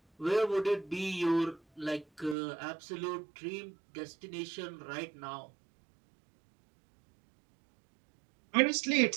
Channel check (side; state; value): left; drops out; at 2.4 s